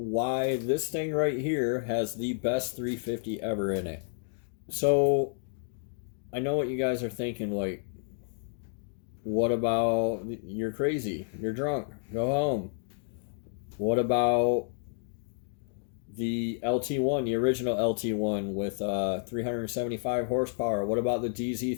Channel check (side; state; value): right; silent; digital silence